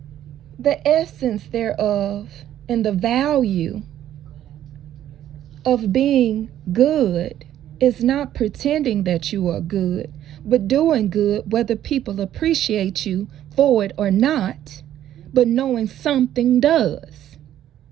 The essence thereof and the value of being good It's not pretending that you are good, but doing good whether people appreciate you for it or not, but knowing something does.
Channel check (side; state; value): left; quieter; 11.7 dB